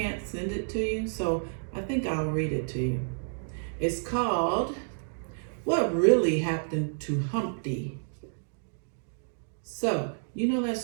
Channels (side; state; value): left; silent; digital silence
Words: send it to you, so I think I'll read it to you. It's called What Really Happened to Humpty. So, you know that